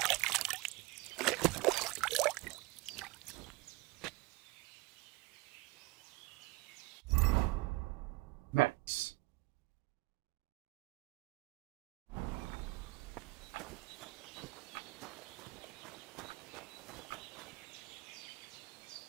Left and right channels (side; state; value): left; quieter; 22.9 dB